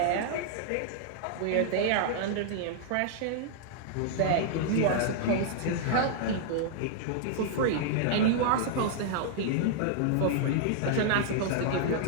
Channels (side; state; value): both; different; correlation -0.01